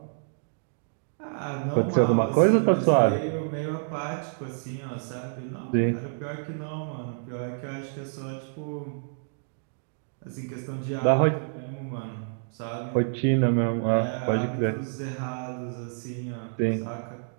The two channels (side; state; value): left; silent; digital silence